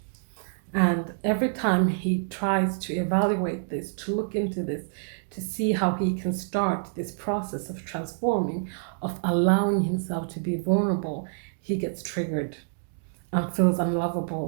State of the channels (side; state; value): left; silent; digital silence